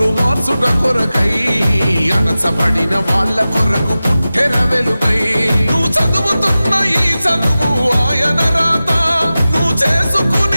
మార్చుట కొరకై అణచబడిన వాళ్ళ కొరకు పుట్టెర వెలుగై నువ్వు చదువుతున్న ఈ చదువు ఆయన రాత నువ్వు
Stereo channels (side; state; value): both; inverted; correlation -0.95